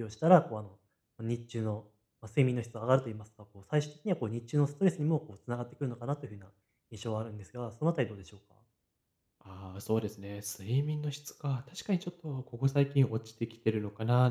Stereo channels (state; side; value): identical; both; correlation 1.00